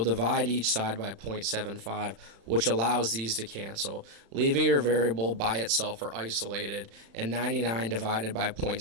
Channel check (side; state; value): left; late; 35 ms